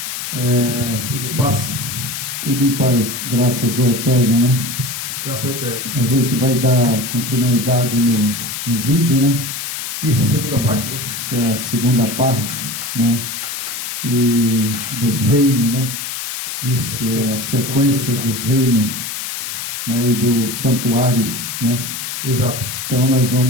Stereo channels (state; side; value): noise; left; hiss, 5 dB below the sound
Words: Tudo em paz. Tudo em paz, graças ao Eterno, né? Graças ao Eterno. A gente vai dar continuidade no vídeo, né? Isso, segunda parte, né? Que é a segunda parte, né? E dos reinos, né? Isso. Que é a sequência dos reinos, né? E do santuário, né? Exato. Então nós